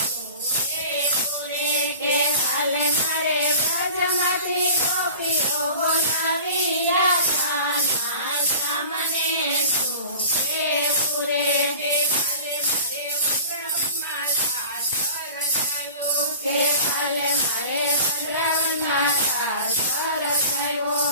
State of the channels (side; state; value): both; inverted; correlation -0.40